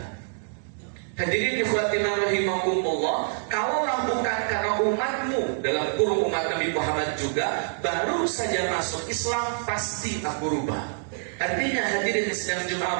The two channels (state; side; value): silent; left; digital silence